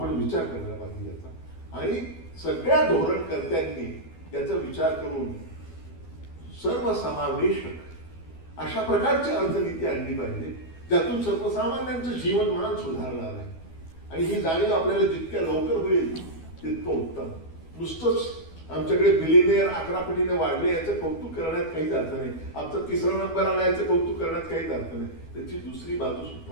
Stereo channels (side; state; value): right; late; 12 ms